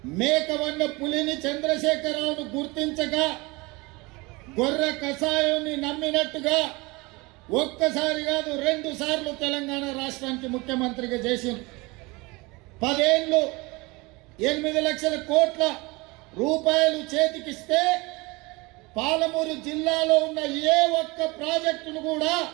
మేకవన్న పులిని చంద్రశేఖరరావును గుర్తించక గొర్రె కషాయాన్ని నమ్మినట్టుగా ఒక్కసారి కాదు 2 సార్లు తెలంగాణ రాష్ట్రానికి ముఖ్యమంత్రిగా చేసింది. 10 ఏళ్ళు 8 లక్షల కోట్ల రూపాయలు చేతికిస్తే పాలమూరు జిల్లాలో ఉన్న ఏ ఒక్క ప్రాజెక్టును కూడా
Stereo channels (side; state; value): left; quieter; 24.6 dB